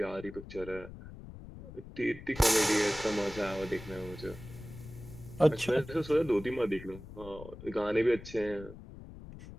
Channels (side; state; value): left; noise; rumble, 15 dB below the sound